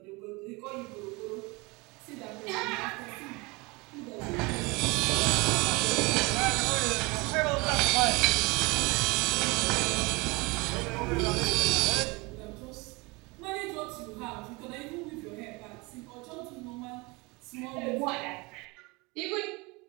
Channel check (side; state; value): left; quieter; 25.9 dB